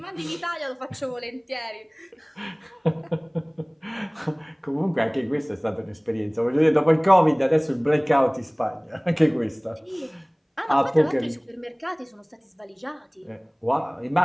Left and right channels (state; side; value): identical; both; correlation 1.00